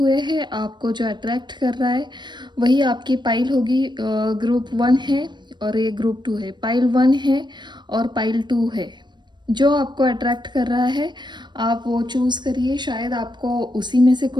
हैं, आपको जो अट्रैक्ट कर रहा है वही आपकी पाइल होगी। ग्रुप 1 है और ये ग्रुप 2 है। पाइल 1 है और पाइल 2 है। जो आपको अट्रैक्ट कर रहा है आप वो चूज़ करिए। शायद आपको उसी में से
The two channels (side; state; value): left; late; 0.22 ms